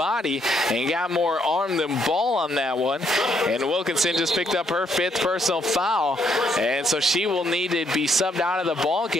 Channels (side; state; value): both; normal; correlation 0.72